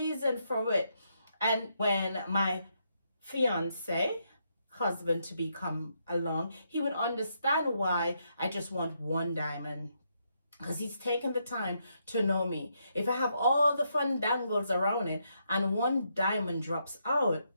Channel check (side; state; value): both; inverted; correlation -0.78